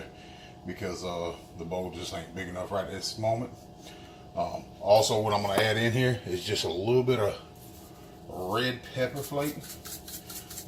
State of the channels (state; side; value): identical; both; correlation 1.00